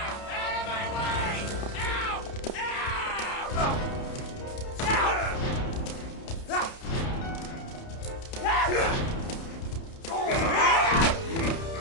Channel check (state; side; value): late; right; 30 ms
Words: of my way! Ow!